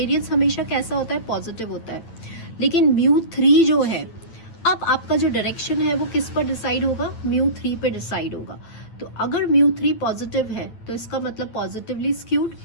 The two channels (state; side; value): late; right; 9.0 ms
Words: हमेशा कैसा होता है, पॉजिटिव होता है। लेकिन म्यू 3 जो है, अब आपका जो डायरेक्शन है वो किस पर डिसाइड होगा, म्यू 3 पे डिसाइड होगा। तो अगर म्यू 3 पॉजिटिव है तो इसका मतलब पॉजिटिवली स्क्यूड,